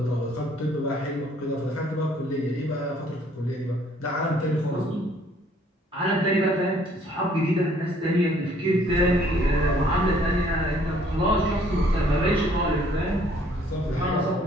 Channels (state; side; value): normal; both; correlation 0.61